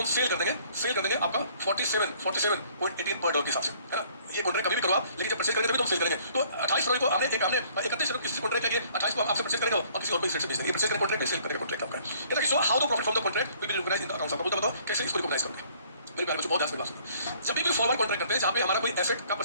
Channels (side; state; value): both; inverted; correlation -0.59